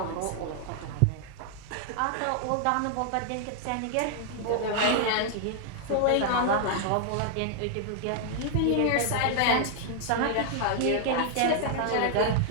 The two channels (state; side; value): different; both; correlation 0.00